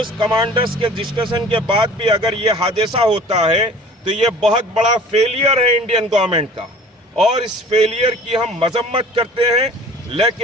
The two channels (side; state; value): both; normal; correlation 0.47